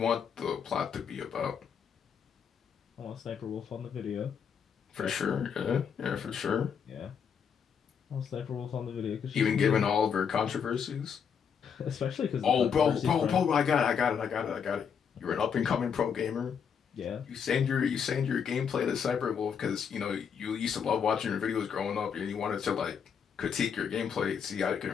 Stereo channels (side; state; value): right; quieter; 7.1 dB